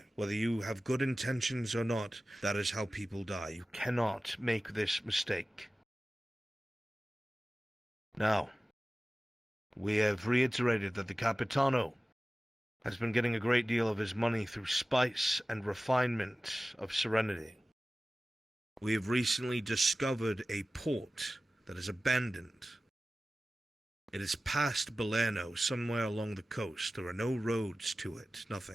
Whether you have good intentions or not, that is how people die. You cannot make this mistake. Now, we have reiterated that the Capitano has been getting a great deal of his money through spice and refinement of serenity. We have recently discovered a port that is abandoned. It is past Belerno, somewhere along the coast. There are no roads to it,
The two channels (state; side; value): normal; both; correlation 0.96